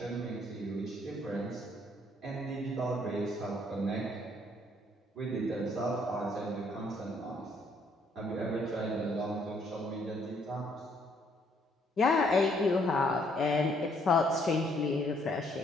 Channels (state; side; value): normal; both; correlation 0.67